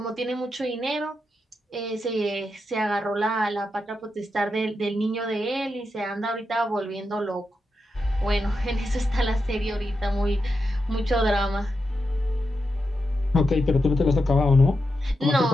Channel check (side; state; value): both; normal; correlation 0.87